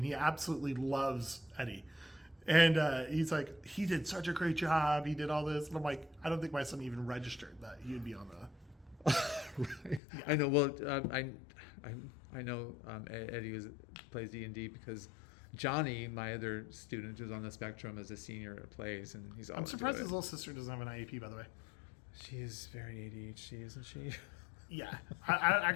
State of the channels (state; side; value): drops out; right; at 10.0 s